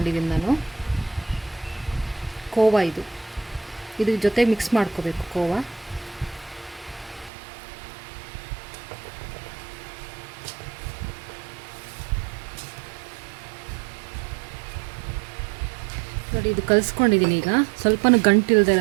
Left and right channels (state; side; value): drops out; left; at 7.3 s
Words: ನಾನು. ಕೋವಾ ಇದ್ರ ಜೊತೆ ಮಿಕ್ಸ್ ಮಾಡ್ಕೋಬೇಕು. ಕೋವಾ ನೋಡಿ, ಇದು ಕಲಿಸ್ಕೊಂಡಿದ್ದೀನಿ. ಈಗ ಸ್ವಲ್ಪನೂ ಗಂಟಿಲ್ಲದೆ